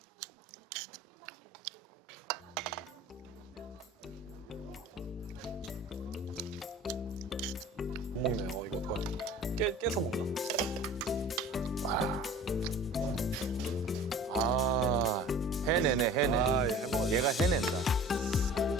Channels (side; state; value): both; normal; correlation 0.43